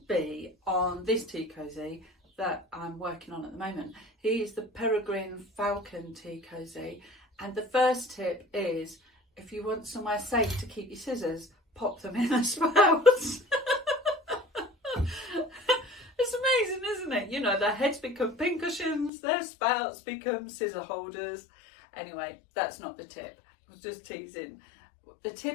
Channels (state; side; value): drops out; right; at 19.1 s